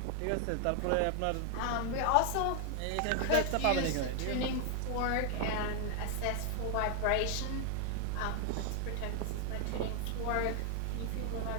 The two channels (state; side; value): different; both; correlation 0.00